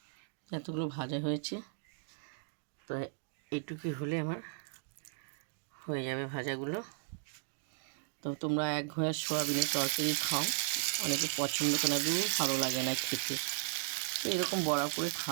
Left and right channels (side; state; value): left; silent; digital silence